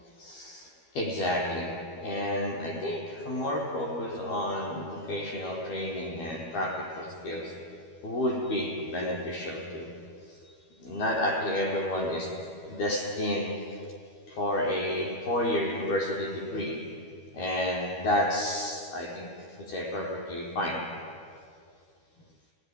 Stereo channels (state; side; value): late; right; 12 ms